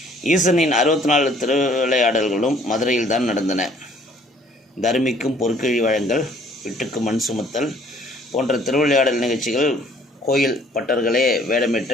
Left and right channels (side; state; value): both; normal; correlation 0.58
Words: ஈசனின் 64 திருவிளையாடல்களும் மதுரையில் தான் நடந்தன. தர்மிக்கும் பொற்கிழி வழங்கல், விட்டுக்கு மண் சுமத்தல் போன்ற திருவிளையாடல் நிகழ்ச்சிகள் கோயில் பட்டர்களே